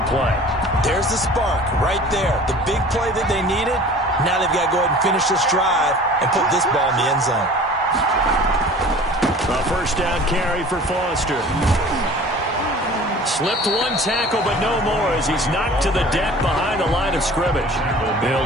play. There's the spark right there. The big play that they needed. Now they've got to go ahead and finish this drive and put this ball in the end zone. A first down carry for Foster. Slipped one tackle, but no more as he's knocked to the deck behind the line of scrimmage.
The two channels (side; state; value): both; normal; correlation 0.44